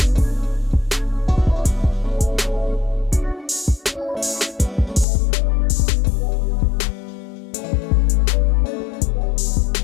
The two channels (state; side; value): drops out; right; at 5.1 s